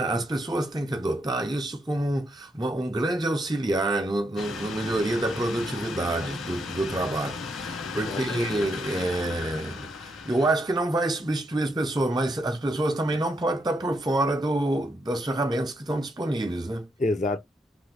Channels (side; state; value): both; normal; correlation 0.79